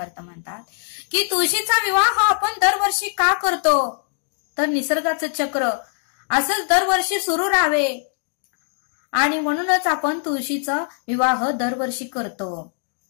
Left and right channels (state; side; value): silent; right; 63 dB below the other